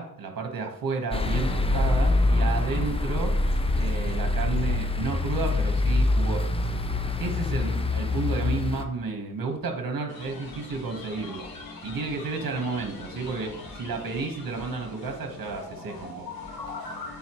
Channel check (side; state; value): both; normal; correlation 0.69